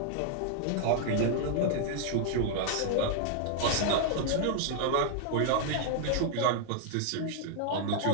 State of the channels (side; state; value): both; different; correlation 0.00